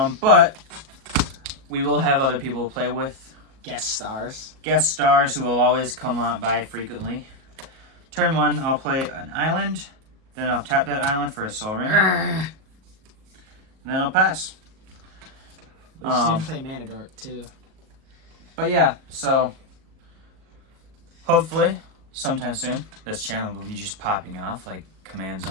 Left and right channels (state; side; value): late; left; 37 ms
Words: But we will have other people to play with. Guest stars. Guest stars who will always come on by frequently. Turn 1, I'll play an island. Then I'll tap that island for a soul ring. And then I'll pass. We should play Mana Dork too. But yeah, so hopefully sometime soon this channel will be just popping off like Command